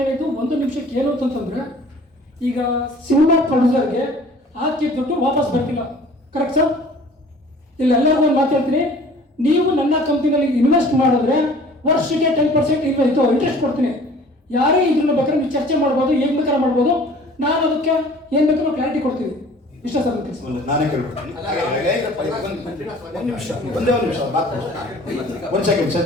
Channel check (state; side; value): normal; both; correlation 0.49